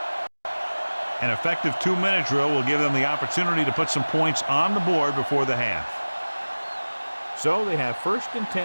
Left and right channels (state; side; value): inverted; both; correlation -1.00